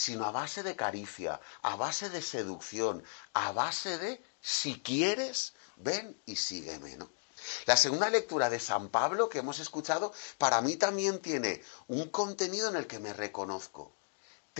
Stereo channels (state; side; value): silent; right; digital silence